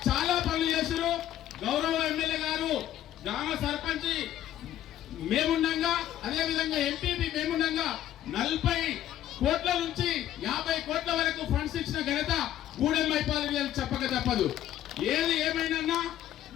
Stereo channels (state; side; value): quieter; right; 12.3 dB